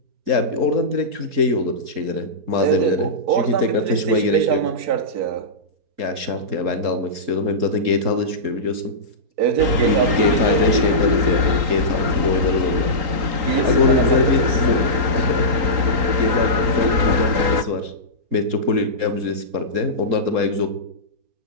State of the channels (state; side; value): late; left; 4.3 ms